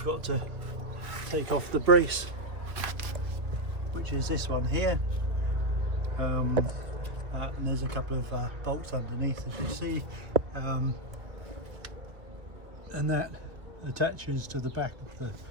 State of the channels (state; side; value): late; left; 2.1 ms